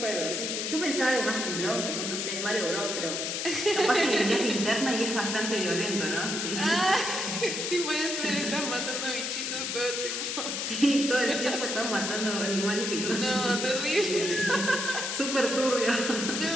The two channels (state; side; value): noise; left; hiss, 2 dB below the sound